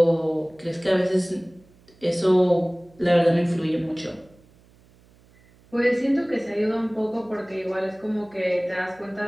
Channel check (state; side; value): noise; right; hum, 29 dB below the sound